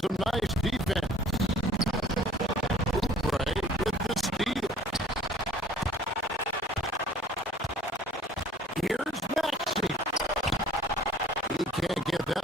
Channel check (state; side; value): normal; both; correlation 0.52